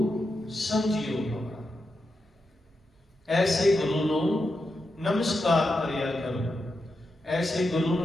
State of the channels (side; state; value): both; normal; correlation 0.87